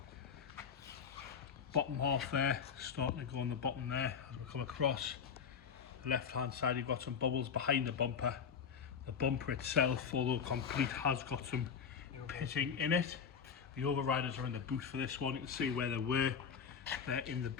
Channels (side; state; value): right; quieter; 6.9 dB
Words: Bottom half there, starting to go on the bottom there. As we come across the left hand side, you've got some bubbles behind the bumper. The bumper itself, although complete, has got some pitting in it. The overriders are in the boot for this one. You can see where they were. They're in the